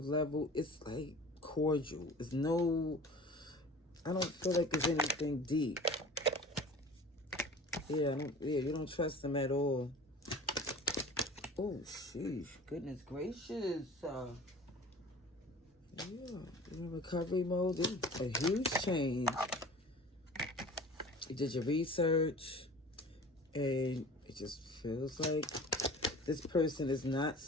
level, it's like cordial. It's no, I don't feel like there's anything deep. Yeah, you don't trust them at all. Oh, sheesh. Goodness gracious. Yeah, you're in recovery mode. This is a huge change. You did your research, and it just feels like this person is not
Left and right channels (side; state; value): both; normal; correlation 0.42